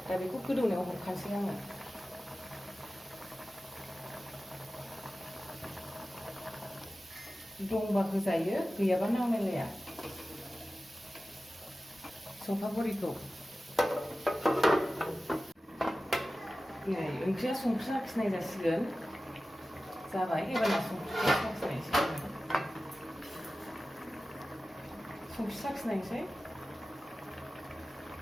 दा बेखौ गोदौनायाव हरखानोसै आङो दंबा होजायो गैयाबा नांलायलाया सखा बरिखौ नै ओंख्रिया संख्रि साखिनाय जासिगोन जाबाय एबारना संख्रिखौ साखिनायसै संख्रि साखिनायसै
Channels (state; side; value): normal; both; correlation 0.95